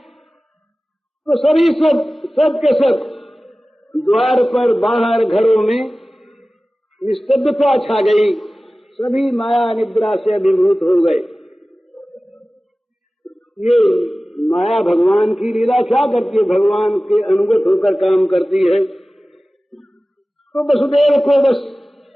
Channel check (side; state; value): both; normal; correlation 0.97